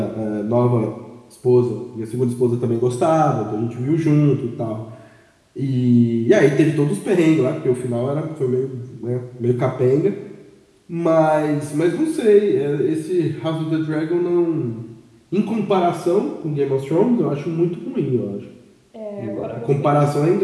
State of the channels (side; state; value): both; identical; correlation 1.00